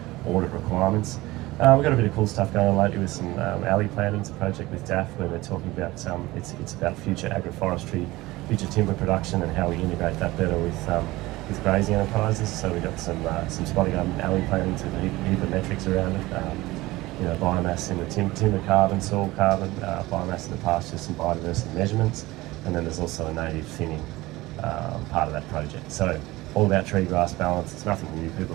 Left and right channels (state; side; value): quieter; left; 19.3 dB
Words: audit requirements. We've got a bit of cool stuff going on lately with some alley planting. It's a project with DAF where they're talking about it's about future agroforestry, future timber production, and how we integrate that better with grazing enterprises. So we've got some spotty garden alley planting to heap of metrics around it. Biomass in the timber carbon, soil carbon, biomass in the pasture, some biodiversity measurements, and then there's also a native thinning part of that project. So all about tree grass balance. It's nothing new. People